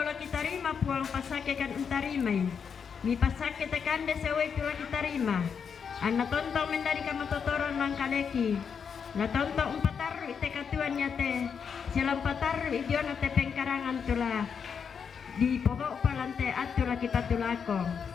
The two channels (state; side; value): quieter; right; 6.7 dB